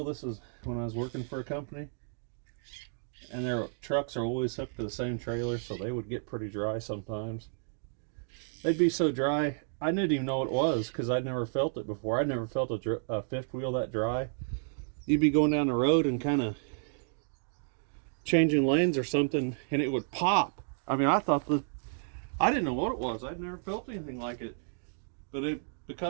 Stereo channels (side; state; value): left; silent; digital silence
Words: this was when I was working for a company, and their trucks are always hooked to the same trailer, so they would get pretty dry sometimes. They'd be so dry, I didn't even know what it was because I'd never felt it before. I'd never felt a fifth wheel that dry. You'd be going down the road and kind of changing lanes or something, and it would pop. I mean, I didn't know what it was. I'd never felt anything like it, but